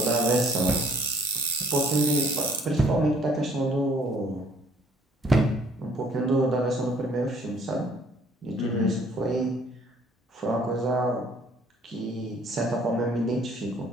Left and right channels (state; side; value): normal; both; correlation 0.58